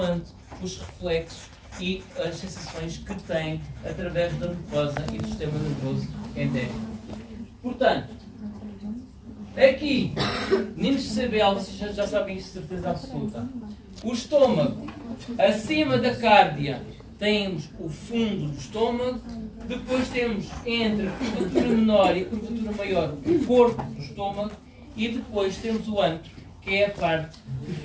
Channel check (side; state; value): both; identical; correlation 1.00